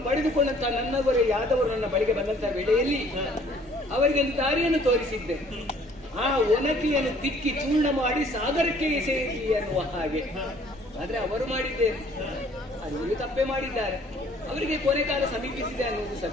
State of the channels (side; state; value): right; noise; hum, 29 dB below the sound